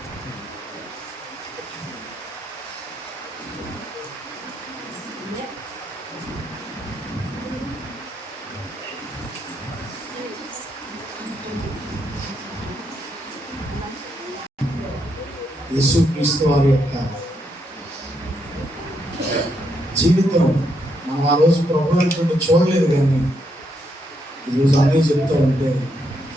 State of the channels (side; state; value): both; normal; correlation 0.78